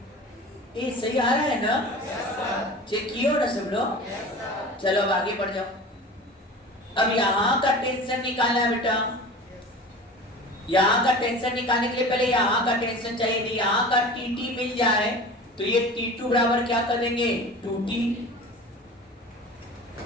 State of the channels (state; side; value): normal; both; correlation 0.37